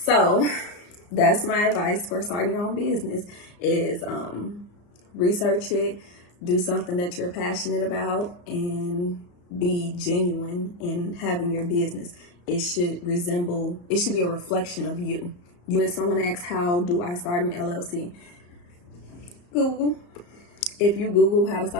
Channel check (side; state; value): right; late; 34 ms